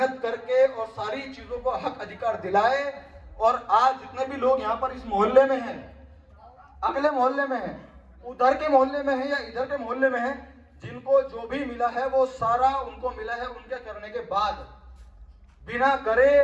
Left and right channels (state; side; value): identical; both; correlation 1.00